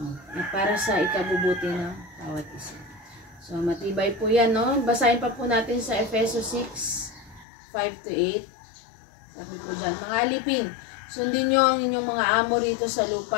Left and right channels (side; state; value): right; drops out; at 7.5 s